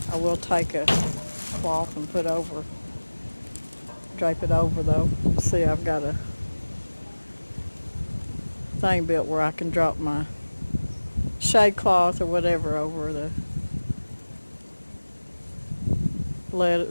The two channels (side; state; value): both; inverted; correlation -1.00